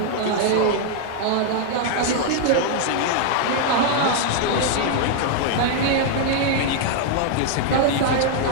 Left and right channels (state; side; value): different; both; correlation 0.00